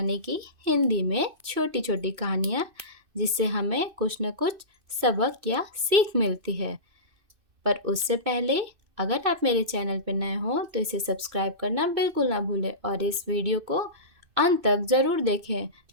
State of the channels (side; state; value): left; late; 2.6 ms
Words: कि हिंदी में छोटी छोटी कहानियाँ जिससे हमें कुछ न कुछ सबक या सीख मिलती है। पर उससे पहले अगर आप मेरे चैनल पर नए हो तो इसे सब्सक्राइब करना बिल्कुल ना भूलें और इस वीडियो को अंत तक ज़रूर देखें